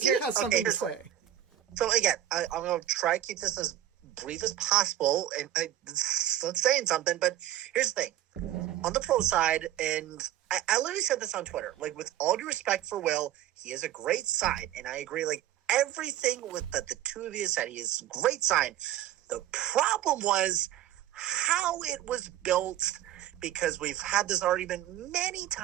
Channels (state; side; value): quieter; left; 12.4 dB